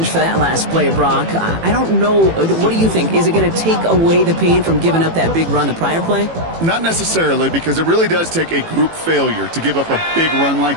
for that last play, Brock. I don't know. What do you think? Is it going to take away the pain from giving up that big run the prior play? Not necessarily, because it really does take a group failure to give up a big run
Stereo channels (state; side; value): late; left; 18 ms